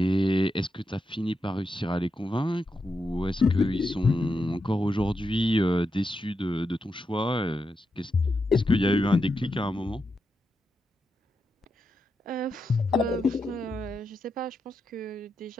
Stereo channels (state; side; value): normal; both; correlation 0.86